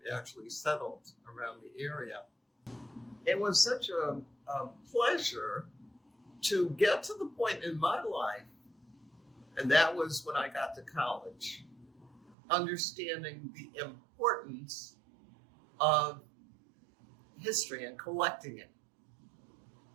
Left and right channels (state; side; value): drops out; left; at 12.4 s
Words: actually settled around the area. It was such a pleasure to get to the point in my life, and that was when I got to college, understanding the importance of history and collecting it.